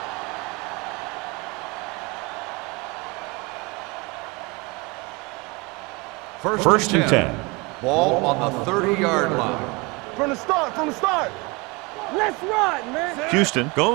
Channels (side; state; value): left; quieter; 26.9 dB